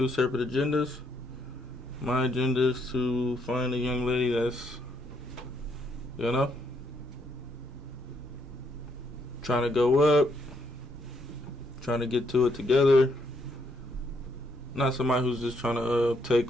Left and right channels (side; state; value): both; normal; correlation 0.73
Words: separate agendas. My agenda is to find a young lady that's, you know, trying to go up, trying to get to it together. Not somebody who's just trying to take